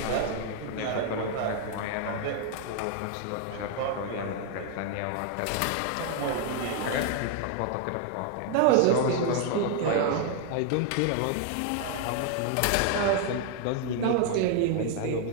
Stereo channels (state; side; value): different; both; correlation 0.00